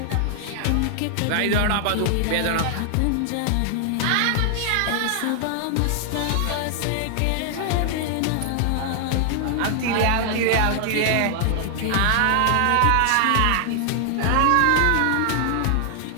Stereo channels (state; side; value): different; both; correlation 0.00